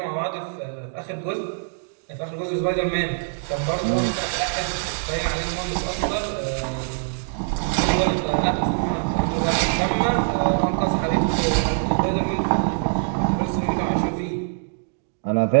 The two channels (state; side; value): silent; left; digital silence